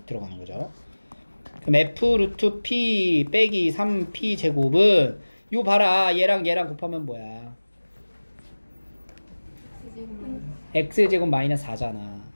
들어가는 거죠. 그럼 f 루트 p 빼기 3p 제곱은 요 봐라 얘랑 얘랑 곱하면 뭐야? x 제곱 마이너스 4잖아.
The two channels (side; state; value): both; inverted; correlation -1.00